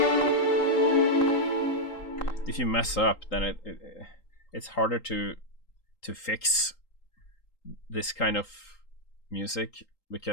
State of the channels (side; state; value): right; late; 3.8 ms